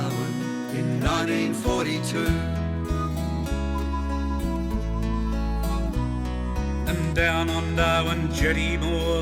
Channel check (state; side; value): identical; both; correlation 1.00